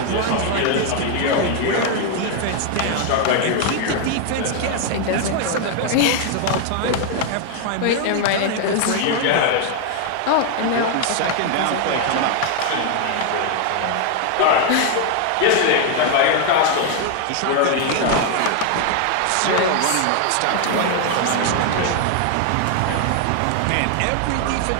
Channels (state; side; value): different; both; correlation 0.00